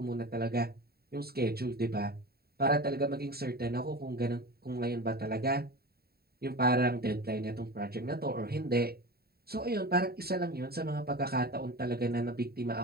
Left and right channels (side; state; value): left; late; 0.45 ms